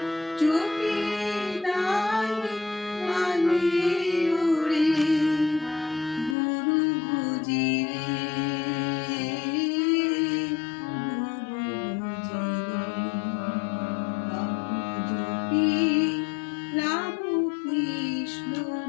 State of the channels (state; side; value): drops out; right; at 6.4 s